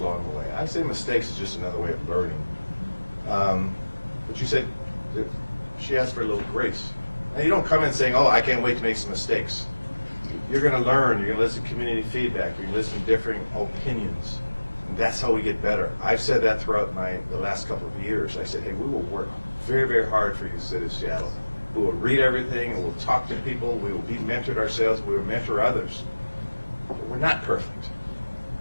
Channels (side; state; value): both; inverted; correlation -1.00